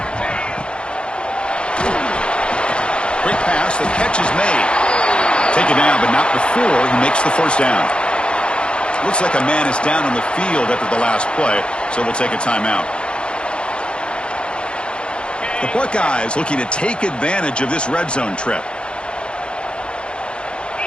Quick pass, the catch is made. Taken down, but not before he makes the first down. Looks like a man is down on the field after the last play, so we'll take a timeout. The Buckeyes looking to take advantage of this red zone trip.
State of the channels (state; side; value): late; right; 0.055 ms